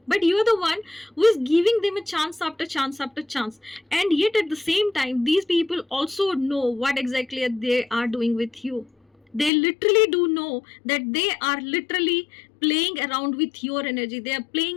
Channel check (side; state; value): right; drops out; at 9.5 s